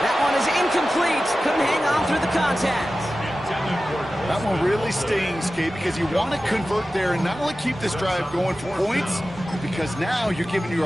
That one is incomplete. Couldn't hang on through the contact. That one really stings, Kate, because you want to convert there and not only keep this drive going for points, because now you're giving your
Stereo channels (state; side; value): normal; both; correlation 0.95